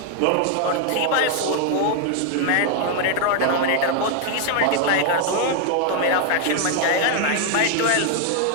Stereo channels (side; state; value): both; different; correlation 0.00